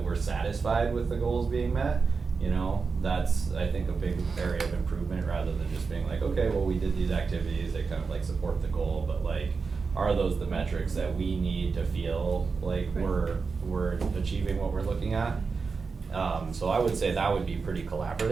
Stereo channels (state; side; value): quieter; left; 4.8 dB